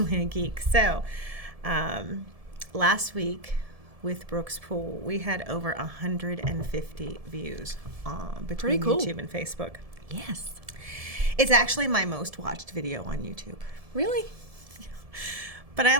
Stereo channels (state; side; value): late; left; 1.7 ms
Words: a geek. So, last week with Brooks Pool, we had over 150 views between YouTube and Facebook. Yes. It's actually my most watched video on YouTube. Really? But I